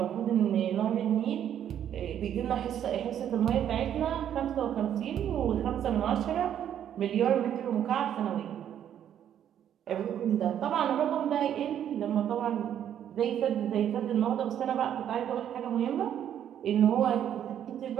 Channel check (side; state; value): left; quieter; 10.0 dB